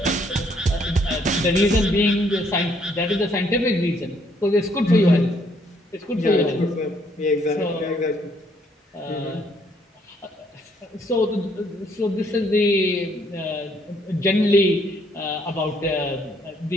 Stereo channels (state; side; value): normal; both; correlation 0.68